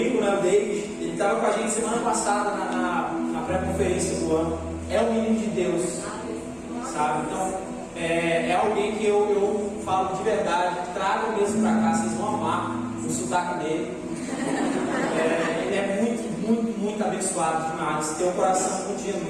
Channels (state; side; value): identical; both; correlation 1.00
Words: né, o David, ele estava com a gente semana passada na pré-conferência do ano. É um menino de Deus, sabe? Então, é alguém que eu falo de verdade, trago mesmo para cá, vocês vão amar o sotaque dele. Ele é muito abençoado demais, tem um coração muito